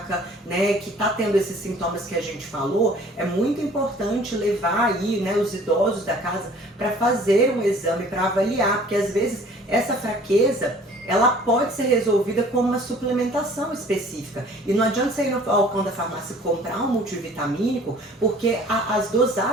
né, que está tendo esses sintomas que a gente falou, é muito importante levar aí, né, os idosos da casa para fazer um exame, para avaliar, porque às vezes essa fraqueza, ela pode ser resolvida com uma suplementação específica. E não adianta você ir no balcão da farmácia comprar um multivitamínico, porque as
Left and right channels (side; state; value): both; normal; correlation 0.51